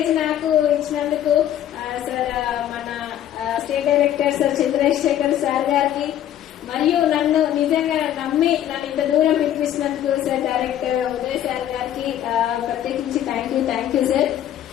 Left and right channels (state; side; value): quieter; right; 11.3 dB